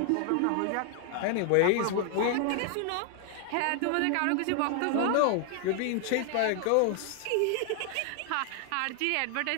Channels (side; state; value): both; different; correlation 0.00